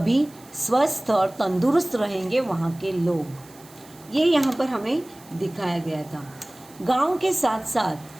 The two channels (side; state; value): right; noise; hiss, 24 dB below the sound